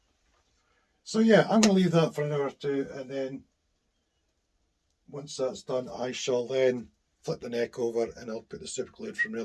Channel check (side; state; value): both; identical; correlation 1.00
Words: So yeah, I'm going to leave that for an hour or two, and then once that's done, I shall then flip the neck over and I'll put the super glue in from the